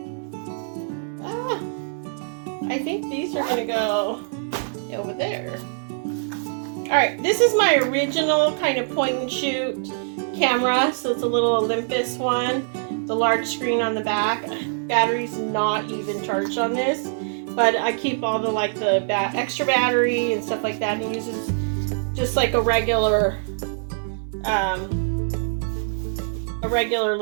I think these are going to go over there. Alright, this is my original kind of point and shoot camera. So it's a little Olympus one. The large screen on the back. Battery's not even charged on this. But I keep all the like the extra battery and stuff like that. And it uses just like a regular little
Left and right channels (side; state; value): left; silent; 63 dB below the other